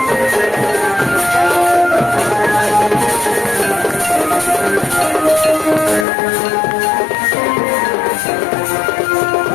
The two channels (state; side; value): drops out; right; at 6.1 s